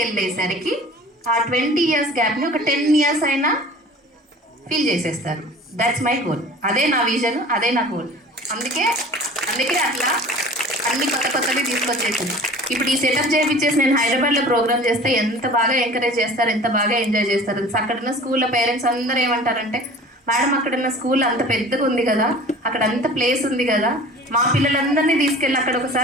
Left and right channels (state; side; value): normal; both; correlation 0.43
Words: వెళ్ళేసరికి ఆ 20 years గ్యాప్ని ఒక 10 years అయినా ఫీల్ చేసేస్తారు. That's my goal. అదే నా విజన్, అదే నా గోల్. అందుకే అట్లా అన్ని కొత్త కొత్తవి తీసుకొచ్చేసింది. ఇప్పుడు ఈ సెటప్ చేయించేసి నేను హైదరాబాద్లో ప్రోగ్రామ్ చేస్తే ఎంత బాగా ఎంకరేజ్ చేస్తారు, ఎంత బాగా ఎంజాయ్ చేస్తారు. అక్కడున్న స్కూల్లో పేరెంట్స్ అందరూ ఏమంటారంటే, మేడం అక్కడున్న స్కూల్ అంత పెద్దగా ఉంది కదా, అక్కడ అంత ప్లేస్ ఉంది కదా, మా పిల్లలందరినీ తీసుకెళ్ళి అక్కడ